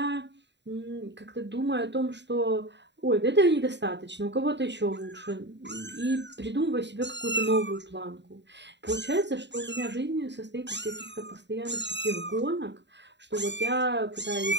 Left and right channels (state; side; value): late; left; 0.51 ms